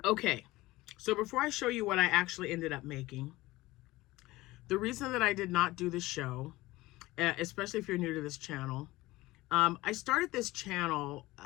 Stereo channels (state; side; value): quieter; right; 19.1 dB